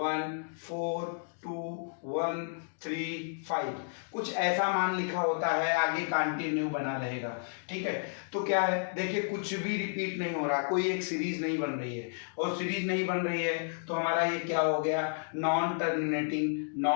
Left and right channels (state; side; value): silent; right; digital silence